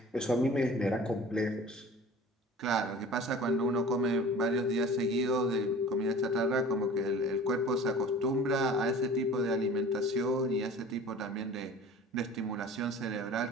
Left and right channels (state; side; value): normal; both; correlation 0.43